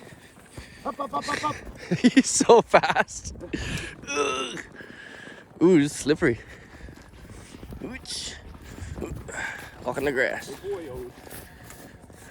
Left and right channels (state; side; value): identical; both; correlation 1.00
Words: Up, up, up, up, up. He's so fast. Ugh. Ooh, it's slippery. Ooch. Walk in the grass. Good boy, Odie.